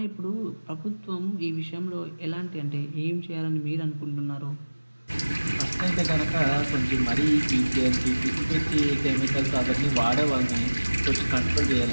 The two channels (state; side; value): inverted; both; correlation -1.00